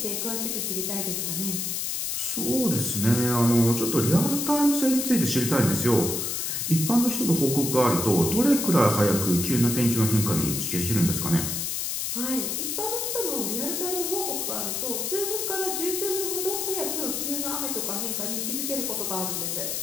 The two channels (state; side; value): noise; left; hiss, 1 dB below the sound